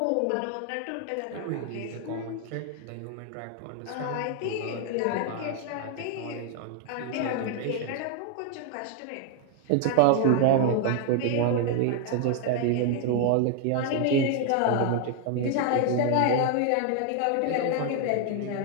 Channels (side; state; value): both; different; correlation 0.00